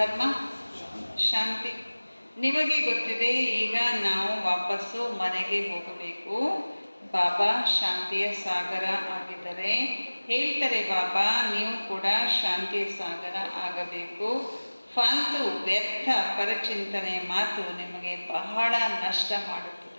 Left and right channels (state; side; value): inverted; both; correlation -1.00